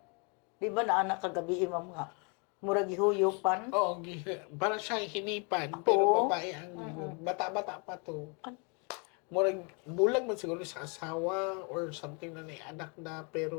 Di ba na anak kagabi ma'am nga? Murag ihuyupan. Oo, parang siya hinipan, pero Oo. babae ang bata-bata pa to. Murag, bulag man siguro sa asawa or something na may anak na,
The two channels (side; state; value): right; quieter; 34.4 dB